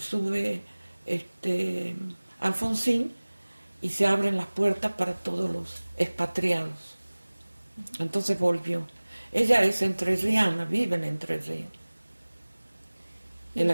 Alfonsín y se abren las puertas para todos los expatriados. Entonces volvió. Ella es entrerriana, vive en Entre Ríos. ¿Y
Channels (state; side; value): inverted; both; correlation -1.00